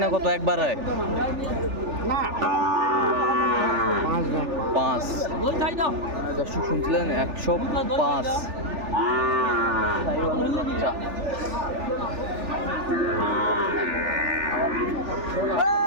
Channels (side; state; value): left; late; 3.4 ms